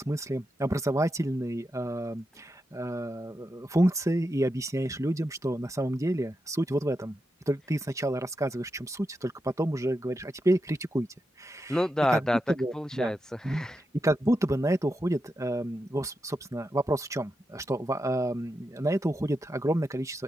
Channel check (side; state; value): both; normal; correlation 0.87